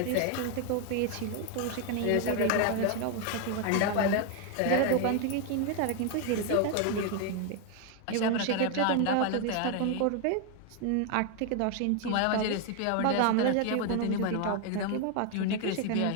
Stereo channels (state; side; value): different; both; correlation 0.01